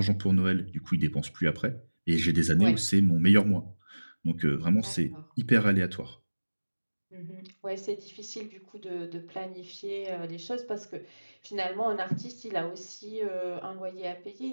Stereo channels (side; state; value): both; inverted; correlation -1.00